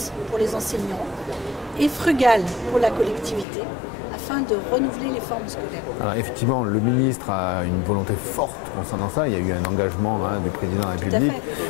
pour les enseignants et frugales pour la collectivité, afin de renouveler les formes scolaires. Alors effectivement, le ministre a une volonté forte concernant ça. Il y a eu un engagement du président de la République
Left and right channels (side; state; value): right; drops out; at 3.5 s